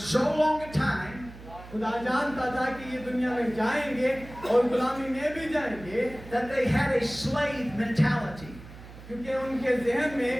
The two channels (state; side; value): noise; right; hum, 16 dB below the sound